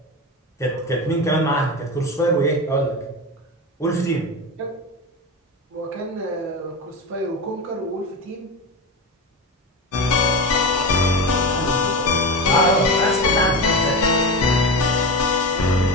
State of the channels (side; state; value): both; normal; correlation 0.22